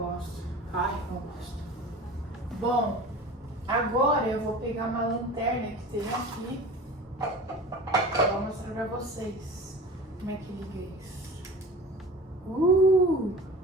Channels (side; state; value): both; normal; correlation 0.37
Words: Não gosto. Bom, agora eu vou pegar uma lanterna que tem aqui. Vou mostrar pra vocês como é que liga isso.